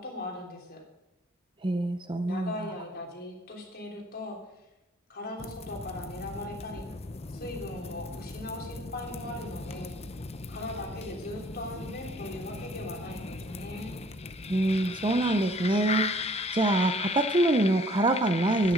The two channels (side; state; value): both; normal; correlation 0.57